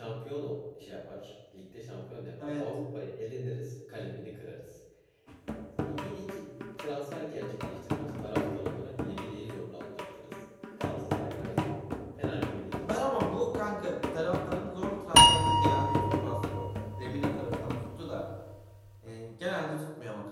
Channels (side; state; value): both; identical; correlation 1.00